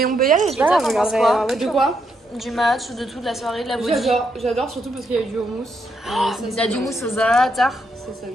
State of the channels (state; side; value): normal; both; correlation 0.78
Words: on peut y aller, Et toi, t'en penses quoi? De quoi? Du match, de tout, de la soirée, de la body. J'adore surtout parce qu'il y a eu du houmous. Il y a du mousse aux za'atar. C'est ça